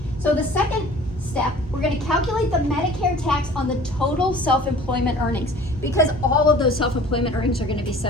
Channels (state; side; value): normal; both; correlation 0.47